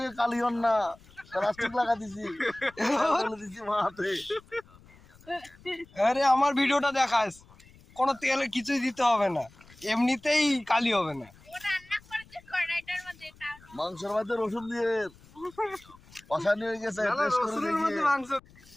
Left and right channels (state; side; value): noise; left; rumble, 25 dB below the sound